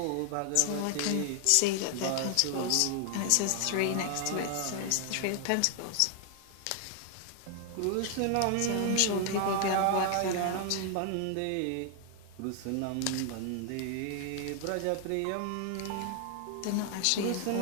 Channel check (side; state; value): both; different; correlation 0.00